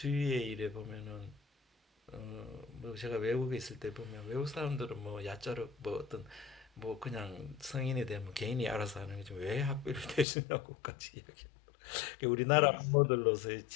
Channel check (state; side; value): drops out; right; at 10.2 s